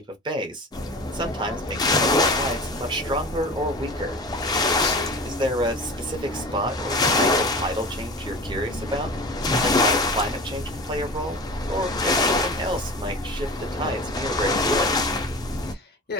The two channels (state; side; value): normal; both; correlation 0.35